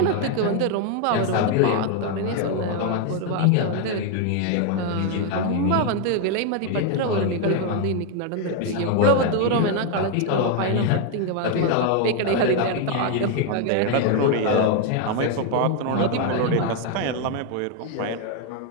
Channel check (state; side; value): different; both; correlation 0.01